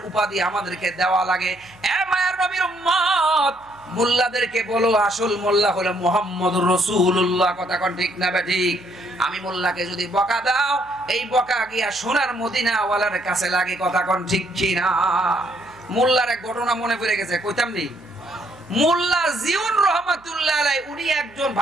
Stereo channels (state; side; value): noise; right; hum, 29 dB below the sound